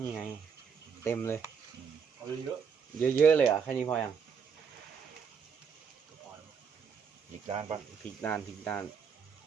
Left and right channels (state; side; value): quieter; left; 6.5 dB